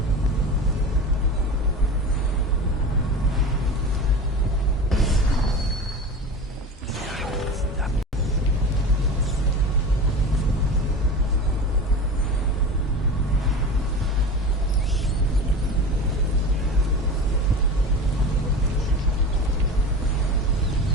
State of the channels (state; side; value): normal; both; correlation 0.30